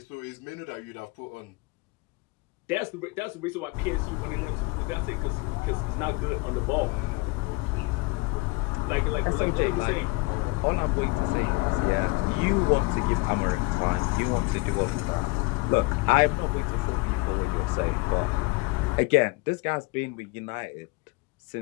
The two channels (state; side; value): quieter; right; 25.0 dB